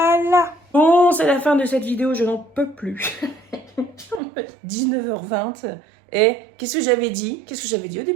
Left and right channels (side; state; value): left; drops out; at 4.2 s